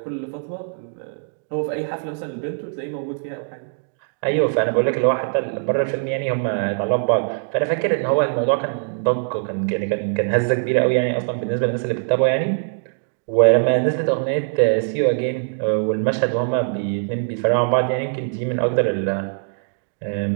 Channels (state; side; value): silent; left; digital silence